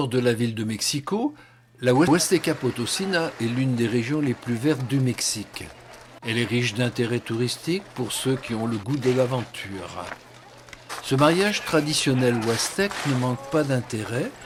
de la ville de Mexico, la Huasteca Potosina est l'une des régions les plus vertes du Mexique. Elle est riche d'intérêts touristiques pour ceux qui ont le goût de l'aventure. Ce mariage traditionnel huastèque ne manque pas d'intérêt,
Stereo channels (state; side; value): identical; both; correlation 1.00